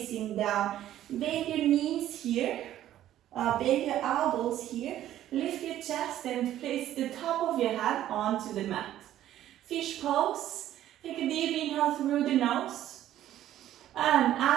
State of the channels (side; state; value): left; quieter; 12.6 dB